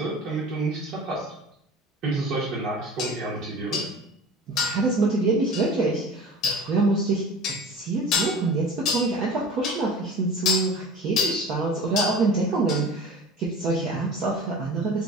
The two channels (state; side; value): normal; both; correlation 0.38